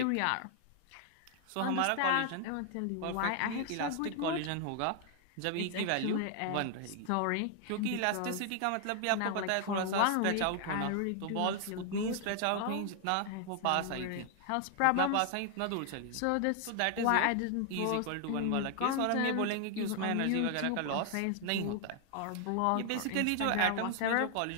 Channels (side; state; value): both; different; correlation 0.00